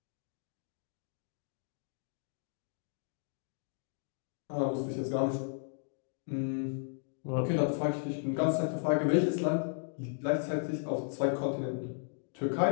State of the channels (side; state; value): right; silent; digital silence